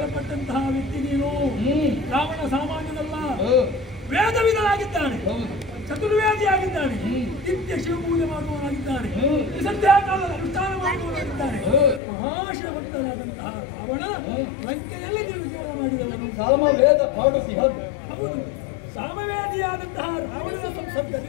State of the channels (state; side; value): drops out; right; at 12.0 s